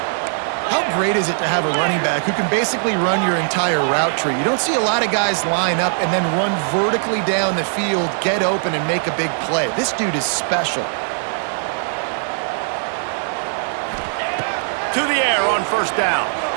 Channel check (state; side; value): silent; left; 65 dB below the other